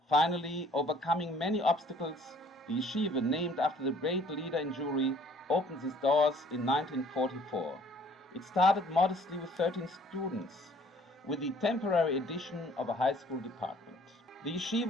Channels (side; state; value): both; normal; correlation 0.57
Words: Finally, overcoming many obstacles, the yeshiva, named after the great leader in Jewry, opened its doors in 1944. It started modestly with 13 students, with the temporary addition of a high school department. The